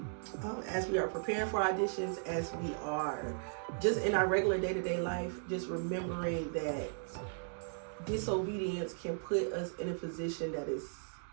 as we are preparing for auditions, as we are just in our regular day-to-day life, just remembering that disobedience can put us in a position that is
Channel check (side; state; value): left; silent; digital silence